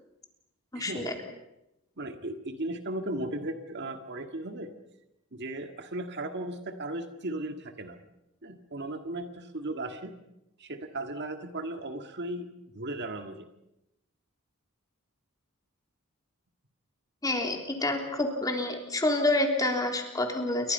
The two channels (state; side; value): normal; both; correlation 0.25